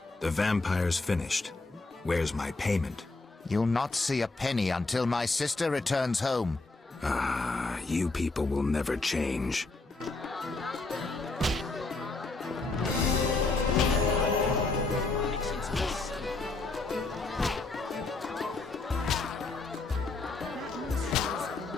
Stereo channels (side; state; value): right; quieter; 3.5 dB